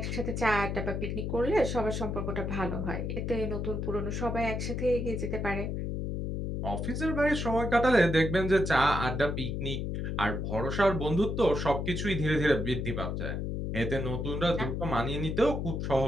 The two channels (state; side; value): noise; left; hum, 2 dB below the sound